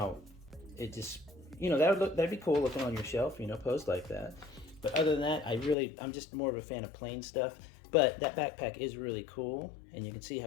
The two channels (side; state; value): right; drops out; at 5.8 s